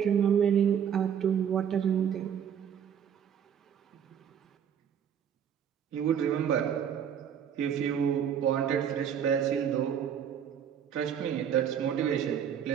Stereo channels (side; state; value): left; quieter; 8.5 dB